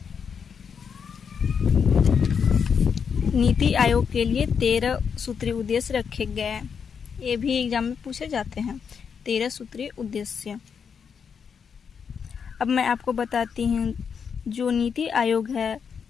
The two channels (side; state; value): right; quieter; 6.6 dB